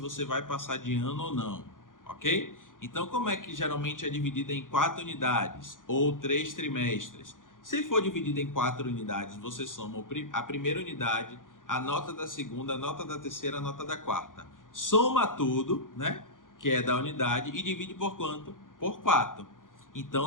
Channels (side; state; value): right; late; 0.89 ms